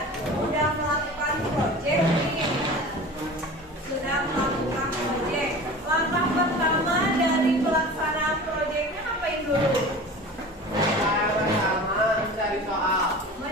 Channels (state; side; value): normal; both; correlation 0.37